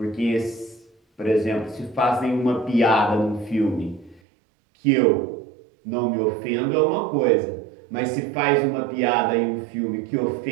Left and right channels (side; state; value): left; drops out; at 4.2 s